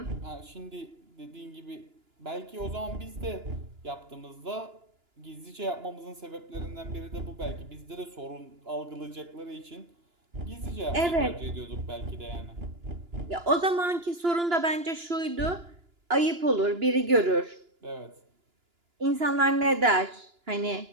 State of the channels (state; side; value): late; left; 2.9 ms